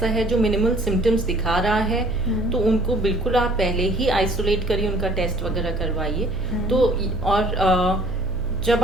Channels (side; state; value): right; noise; hum, 14 dB below the sound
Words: है जो मिनिमल सिम्टम्स दिखा रहा है, तो उनको बिल्कुल आप पहले ही आइसोलेट करिए, उनका टेस्ट वगैरह करवाइए। तो और जब